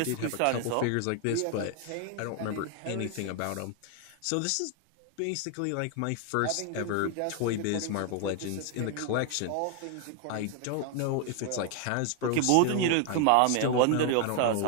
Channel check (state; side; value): different; both; correlation 0.01